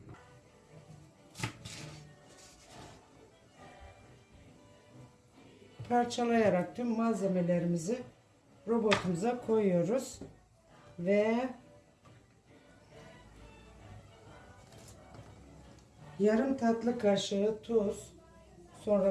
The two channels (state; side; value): identical; both; correlation 1.00